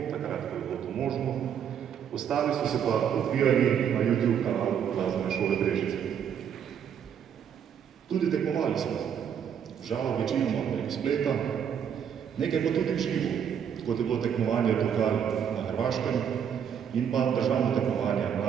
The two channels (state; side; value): quieter; left; 8.3 dB